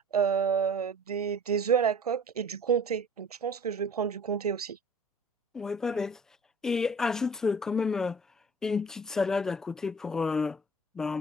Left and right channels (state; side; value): normal; both; correlation 0.47